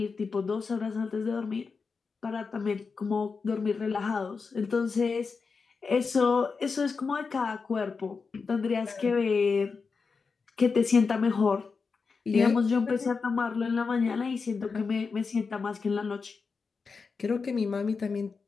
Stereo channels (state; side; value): quieter; right; 4.9 dB